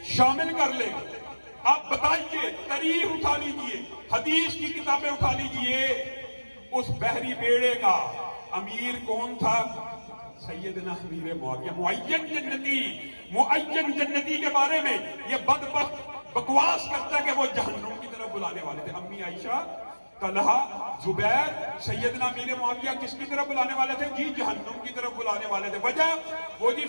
شامل کر لے. آپ بتائیے، تاریخ اٹھا لیجئے، حدیث کی کتابیں اٹھا لیجئے، اس بحری بیڑے کا امیر کون تھا؟ سیدنا امیر معاویہ. معین جنتی کے بارے میں یہ بدبخت بکواس کرتا ہے کہ وہ جہنم کی طرف بلانے والے تھے. امی عائشہ، طلحہ، زبیر، سیدنا امیر معاویہ کس کی طرف بلانے والے تھے؟ جی جہنم کی طرف بلانے والے تھے. وجہ وہ جی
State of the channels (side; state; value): both; inverted; correlation -1.00